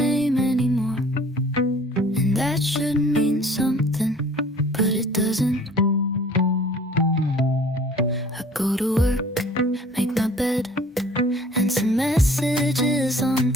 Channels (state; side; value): normal; both; correlation 0.51